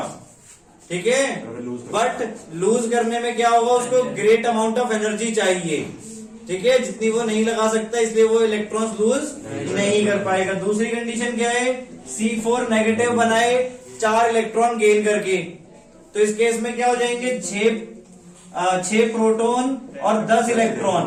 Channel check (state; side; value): identical; both; correlation 1.00